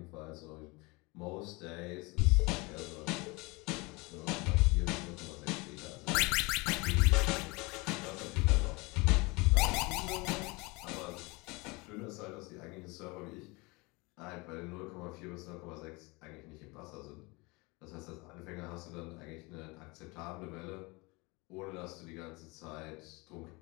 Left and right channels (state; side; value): quieter; right; 25.9 dB